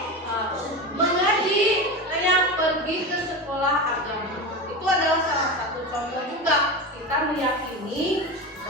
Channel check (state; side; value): normal; both; correlation 0.23